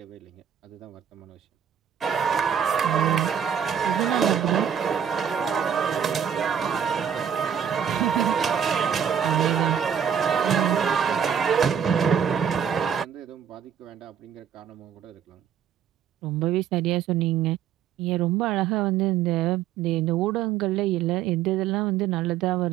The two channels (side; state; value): left; quieter; 8.4 dB